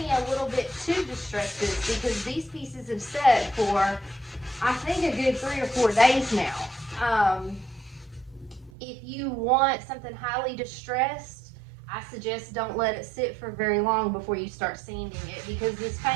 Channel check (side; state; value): left; drops out; at 8.7 s